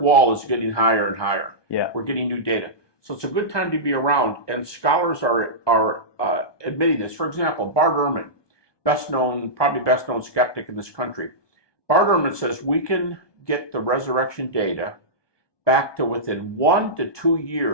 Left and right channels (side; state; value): right; late; 1.2 ms